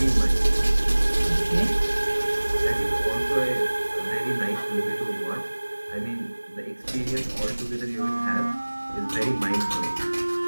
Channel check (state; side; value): inverted; both; correlation -1.00